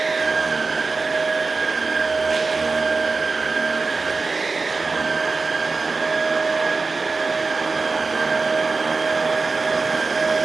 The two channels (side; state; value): left; quieter; 4.1 dB